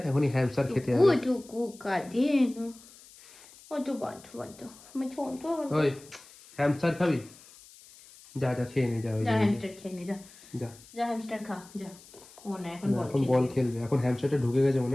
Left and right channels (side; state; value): left; noise; hiss, 22 dB below the sound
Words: এখনই হ্যামস্টার খেতে হবে। টুকু কাজে না, তো বাধ্য আমি ছোট। ওই হ্যামস্টার খাবি? যা যা খেয়ে নে, যা ওই হ্যামস্টার খেয়ে নে, যা যা যা হ্যামস্টার খা যা। ও না, এখন বল খেলবে। এখন হ্যামস্টারটা ঢুকে গেছে